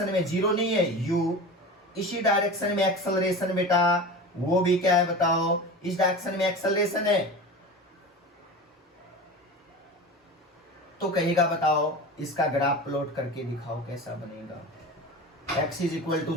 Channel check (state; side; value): normal; both; correlation 0.31